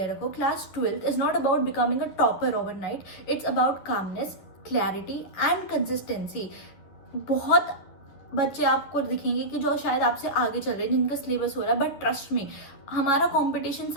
रखो। Class 12 is not about becoming a topper overnight, it's about calmness, clarity and consistency. बहुत बच्चे आपको दिखेंगे कि जो शायद आपसे आगे चल रहे हैं, जिनका सिलेबस हो रहा है, बट ट्रस्ट में हमारा कंपटीशन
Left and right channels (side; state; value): right; late; 10 ms